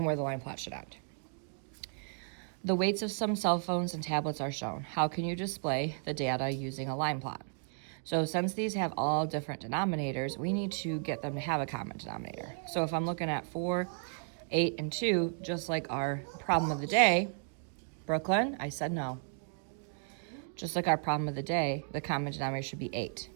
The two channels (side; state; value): left; silent; 55 dB below the other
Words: where the line plot should end. The weights of some cell phones and tablets are shown. How can you display the data using a line plot? So since these have all different denominators, we need to get them to have a common denominator. So if I'm looking at 4, 8, and 2, just like our problem of the day, Brooklyn, I said no. Just like our problem of the day, the common denominator should be 8.